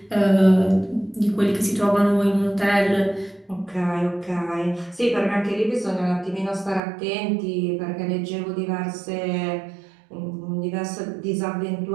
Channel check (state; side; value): drops out; left; at 6.8 s